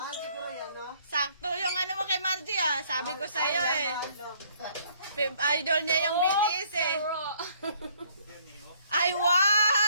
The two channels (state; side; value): inverted; both; correlation -0.63